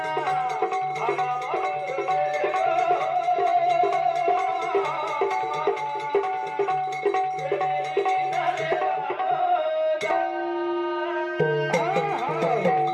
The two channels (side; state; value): both; identical; correlation 1.00